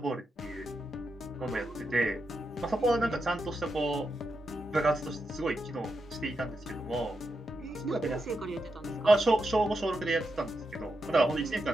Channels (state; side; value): normal; both; correlation 0.86